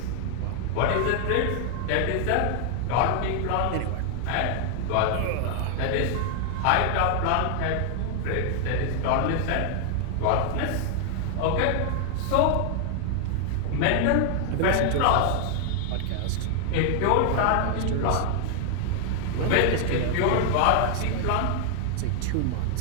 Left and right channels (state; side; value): different; both; correlation 0.00